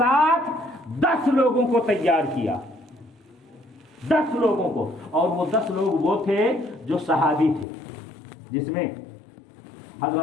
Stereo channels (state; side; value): drops out; right; at 7.7 s